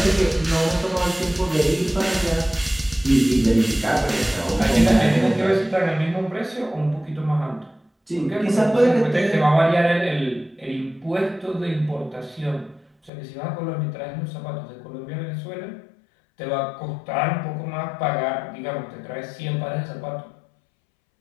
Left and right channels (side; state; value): right; drops out; at 13.1 s